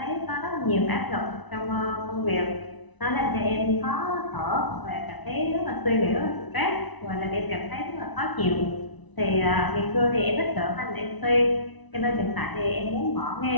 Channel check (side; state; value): right; late; 1.0 ms